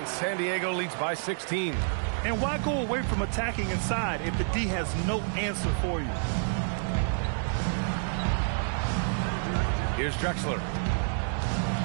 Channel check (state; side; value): silent; left; digital silence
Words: San Diego leads by 16. And why go away from attacking inside if the D has no answer for you? Here's Drexler.